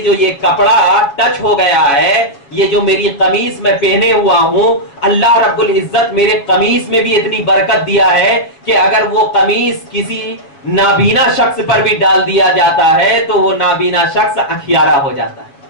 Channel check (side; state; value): right; late; 7.0 ms